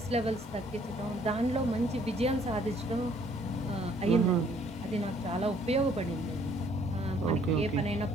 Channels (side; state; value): both; normal; correlation 0.62